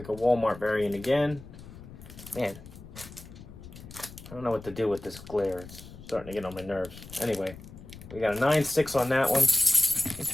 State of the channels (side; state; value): left; noise; rumble, 16 dB below the sound